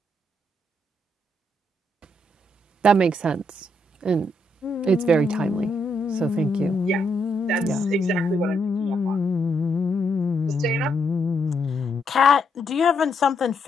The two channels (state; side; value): normal; both; correlation 0.77